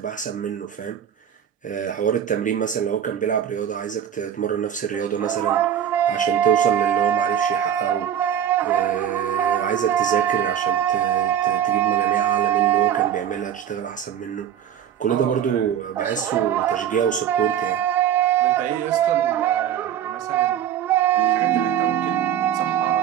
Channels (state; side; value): quieter; left; 9.8 dB